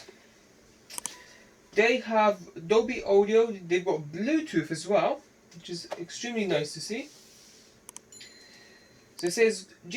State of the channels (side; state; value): both; identical; correlation 1.00